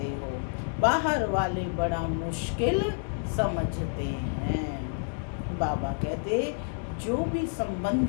हो, बाहर वाले बड़ा मुश्किल समझते हैं। बाबा कहते जो भी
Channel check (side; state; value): right; silent; 59 dB below the other